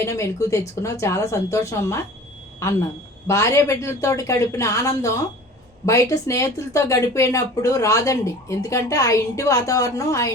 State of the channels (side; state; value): both; normal; correlation 0.42